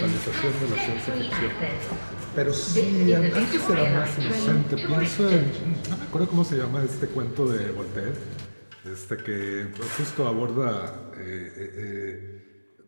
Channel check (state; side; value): inverted; both; correlation -1.00